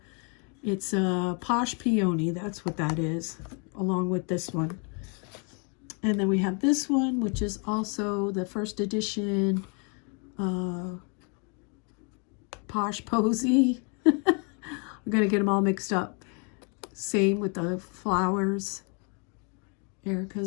It's a Plush Peony, that's what that is, along with this one. And then we have this one, which is also the first edition Posh Posy. I'm going to get them all mixed up. Same with the flowers,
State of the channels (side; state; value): right; quieter; 36.7 dB